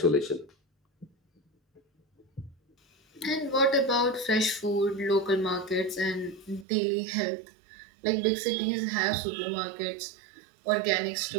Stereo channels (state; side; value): drops out; left; at 6.7 s